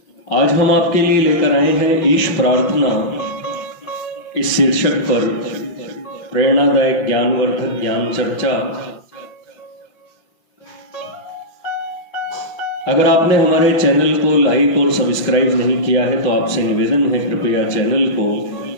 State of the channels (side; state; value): right; late; 5.9 ms